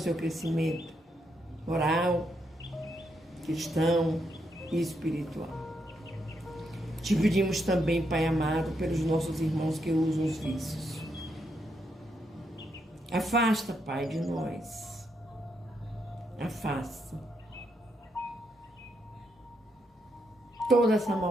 crescimento moral, cristão e espiritual. Te pedimos também, Pai amado, pelos nossos irmãos que usam os vícios. Afasta, Pai, de nós. Afasta toda essa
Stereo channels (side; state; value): both; normal; correlation 0.79